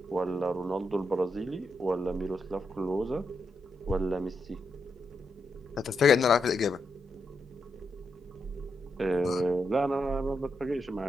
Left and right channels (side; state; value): both; normal; correlation 0.82